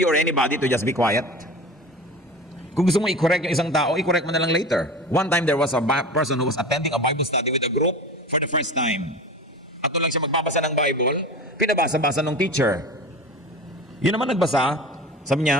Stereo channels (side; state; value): both; normal; correlation 0.33